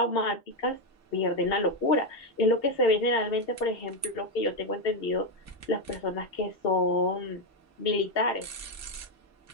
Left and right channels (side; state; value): both; normal; correlation 0.05